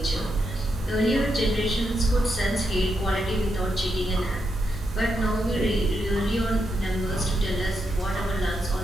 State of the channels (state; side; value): normal; both; correlation 0.83